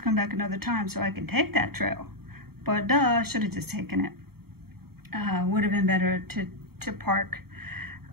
come back another time so I can take that trail. But duh, I should have just taken it. Would have been better to park.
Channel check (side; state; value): left; late; 0.95 ms